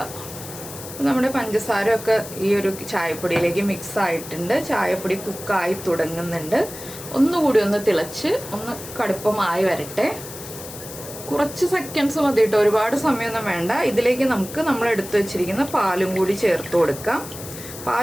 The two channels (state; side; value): noise; left; hiss, 13 dB below the sound